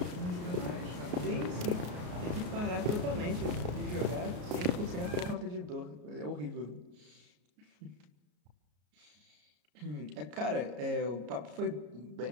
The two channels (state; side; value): late; left; 33 ms